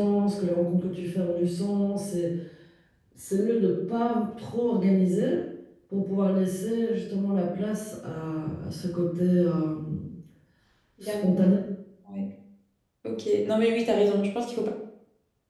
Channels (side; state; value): both; identical; correlation 1.00